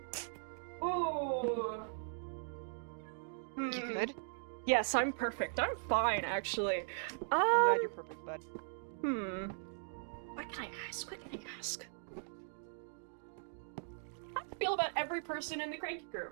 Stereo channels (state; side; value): silent; left; digital silence